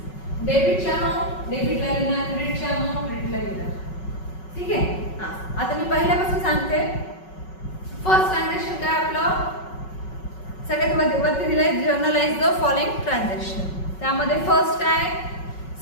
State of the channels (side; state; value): right; late; 5.4 ms